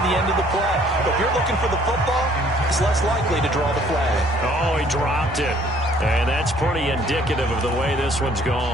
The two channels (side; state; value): both; normal; correlation 0.59